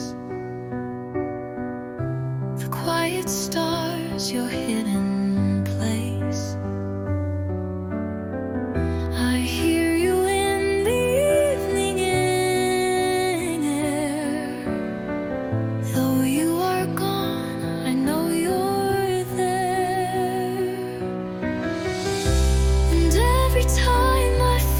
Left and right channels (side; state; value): both; identical; correlation 1.00